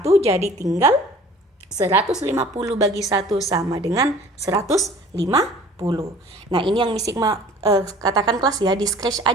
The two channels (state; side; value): normal; both; correlation 0.48